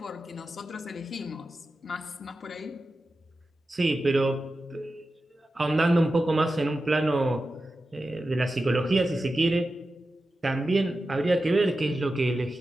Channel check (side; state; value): both; normal; correlation 0.92